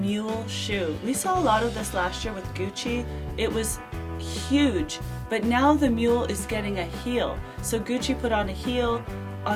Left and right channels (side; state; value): both; identical; correlation 1.00